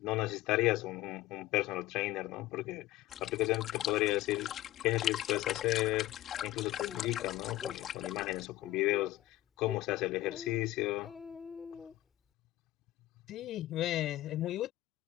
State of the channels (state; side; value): quieter; right; 15.9 dB